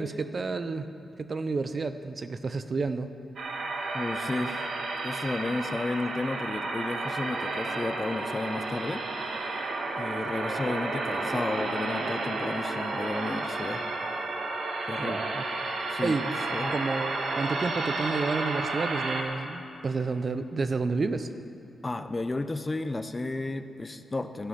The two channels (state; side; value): normal; both; correlation 0.88